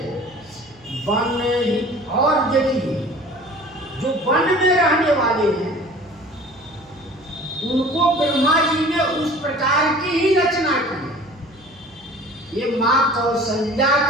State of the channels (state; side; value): noise; right; hum, 27 dB below the sound